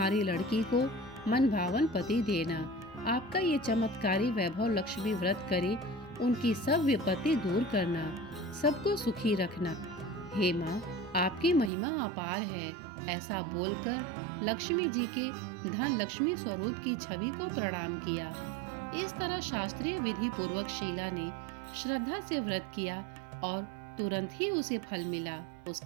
लड़की को मन भावन पति देना। आपका ये चमत्कारी वैभव लक्ष्मी व्रत करे, उनकी सब विपत्ति दूर करना, सबको सुखी रखना। हे माँ, आपकी महिमा अपार है। ऐसा बोलकर लक्ष्मी जी के धन लक्ष्मी स्वरूप की छवि को प्रणाम किया। इस तरह शास्त्रीय विधि पूर्वक शीला ने श्रद्धा से व्रत किया और तुरंत ही उसे फल मिला।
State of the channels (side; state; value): left; drops out; at 11.7 s